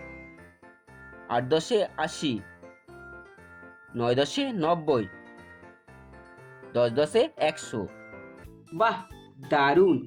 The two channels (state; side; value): identical; both; correlation 1.00